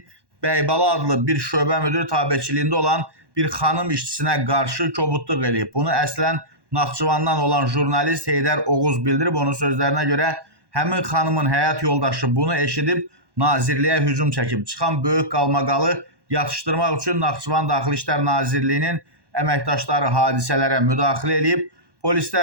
Bəybala adlı bir şöbə müdürü tabeçiliyində olan bir xanım işçisinə qarşı kobudluq eləyib. Bunu əslən Naxçıvandan olan jurnalist Heydər Oğuz bildirib. Onun sözlərinə görə həmin xanımın həyat yoldaşı bunu eşidib nazirliyə hücum çəkib. Çıxan böyük qalmaqalı yatışdırmaq üçün Naxçıvan Daxili İşlər Nazirliyinin əməkdaşları hadisələrə müdaxilə edib.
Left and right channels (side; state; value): left; late; 1.1 ms